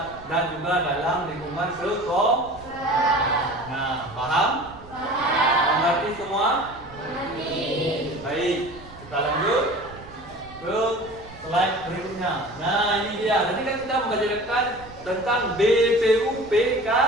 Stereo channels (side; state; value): right; noise; rumble, 19 dB below the sound